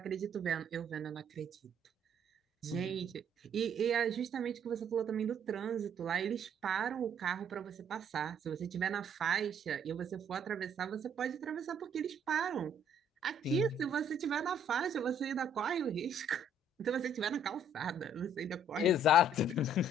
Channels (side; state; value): both; normal; correlation 0.62